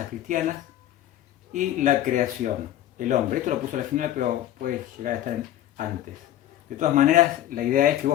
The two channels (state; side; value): quieter; right; 12.6 dB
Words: cristianas y la creación, el hombre. Esto lo puse al final, pero puede llegar a estar antes. De todas maneras, la idea es que